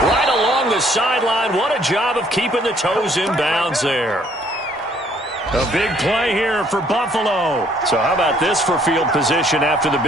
right along the sideline. What a job of keeping the toes in bounds there. A big play here for Buffalo. So how about this for field position after the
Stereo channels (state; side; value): normal; both; correlation 0.63